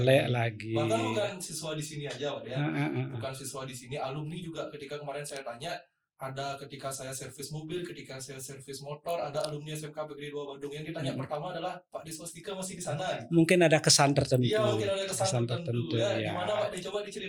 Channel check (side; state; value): both; identical; correlation 1.00